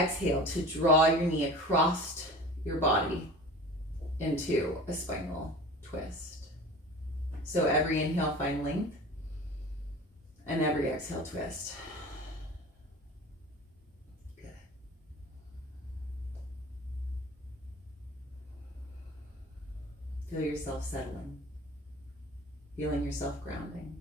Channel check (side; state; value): both; normal; correlation 0.38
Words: to draw your knee across your body into a spinal twist. So every inhale, find length, and every exhale, twist. Good. Feel yourself settling, feeling yourself grounding.